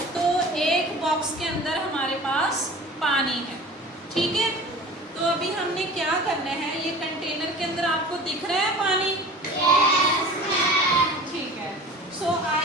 तो एक बॉक्स के अंदर हमारे पास पानी है, ठीक है। तो अभी हमने क्या करना है, ये कंटेनर के अंदर आपको दिख रहा है पानी? ठीक है। सो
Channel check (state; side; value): normal; both; correlation 0.40